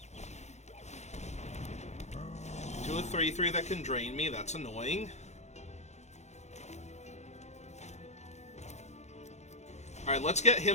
To a 3/3 that can drain me, that's annoying. Alright, let's get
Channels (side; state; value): right; late; 0.33 ms